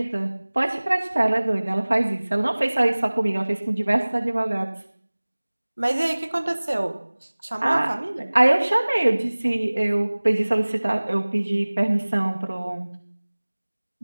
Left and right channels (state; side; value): inverted; both; correlation -1.00